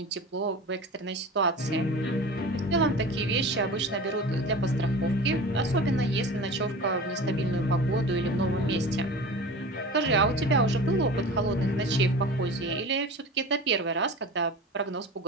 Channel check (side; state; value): both; normal; correlation 0.35